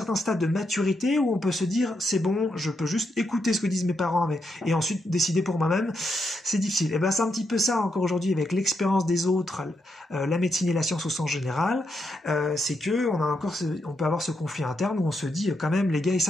stade de maturité où on peut se dire, c'est bon, je peux juste écouter ce que disent mes parents, et ensuite décider pour moi-même. C'est difficile. Et c'est un petit peu ça encore aujourd'hui avec l'expérience des autres, la médecine et la science au sens général. C'est que on peut avoir ce conflit interne où on se dit quand même, les gars ils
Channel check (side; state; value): both; normal; correlation 0.81